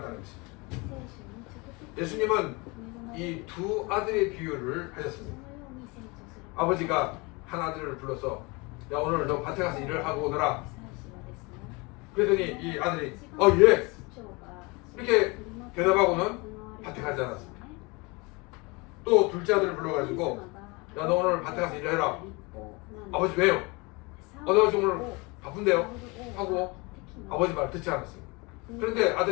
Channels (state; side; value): quieter; right; 27.0 dB